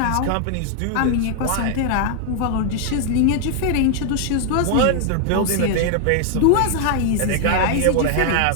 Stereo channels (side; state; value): both; different; correlation 0.00